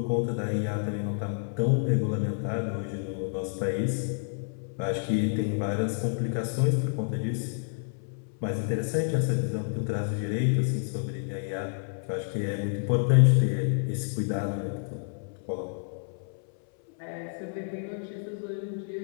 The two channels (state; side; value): silent; right; 58 dB below the other